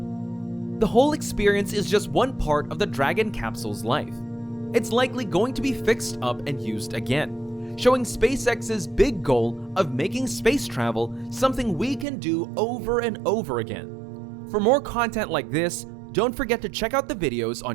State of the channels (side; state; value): left; drops out; at 12.1 s